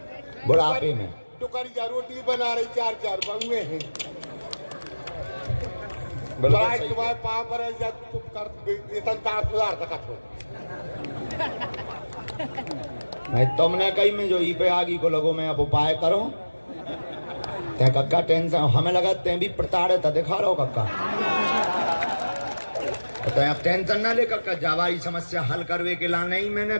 बुढ़ापे में। टुकड़िया रोटी बना रही 4 बउए हैं। तुम्हारे पाँव पर है जब तुम कर संसार सुधार सकत हो। नहीं तुमने कही में जो ई पे आगी को लगो मैं अब उपाय करो। ते कक्का टेंशन हमें लगा ते भी प्रताड़ित दिखा रहा हो कक्का। तो आप टेंशन ना ले कक्का, जावाई समस्या हल करवे के ला नहीं मैंने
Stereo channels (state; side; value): inverted; both; correlation -1.00